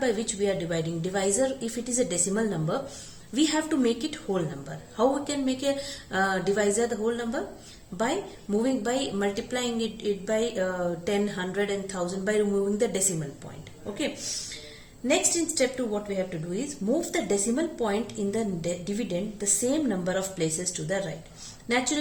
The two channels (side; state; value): both; identical; correlation 1.00